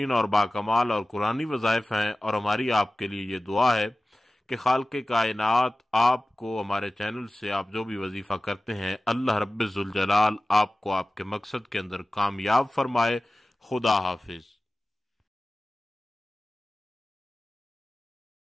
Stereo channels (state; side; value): normal; both; correlation 0.97